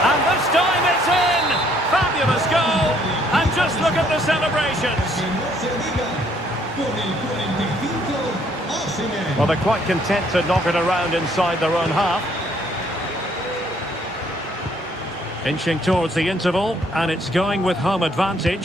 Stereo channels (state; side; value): normal; both; correlation 0.65